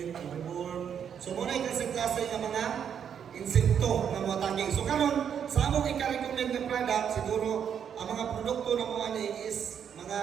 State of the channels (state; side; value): quieter; left; 8.1 dB